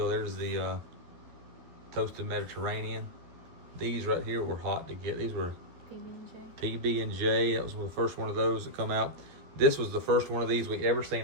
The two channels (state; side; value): late; left; 12 ms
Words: There's the toasted Mediterranean. These right here were hot to get. These were PB&J. That was the first one of those that come out. This was the first one of these we ever